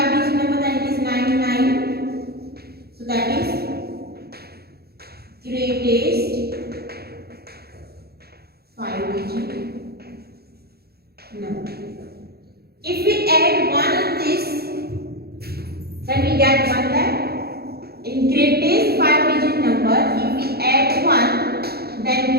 number, then it is 99. So that is greatest 5-digit number. If we add 1 in this, then we get 1 lakh. In greatest 5-digit number, if we add 1, then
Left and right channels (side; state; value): left; late; 0.46 ms